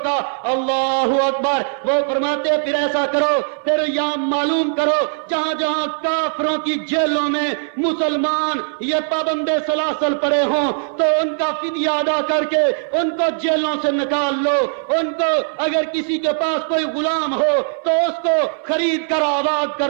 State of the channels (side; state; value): left; silent; 63 dB below the other